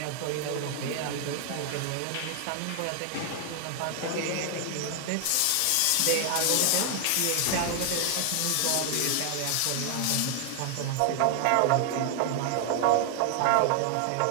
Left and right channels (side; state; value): both; different; correlation 0.00